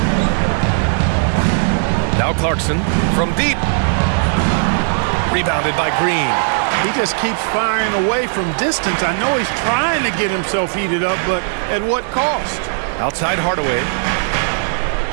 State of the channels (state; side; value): silent; left; digital silence